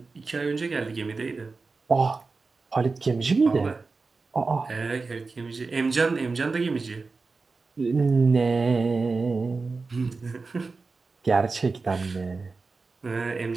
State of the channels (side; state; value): left; quieter; 4.1 dB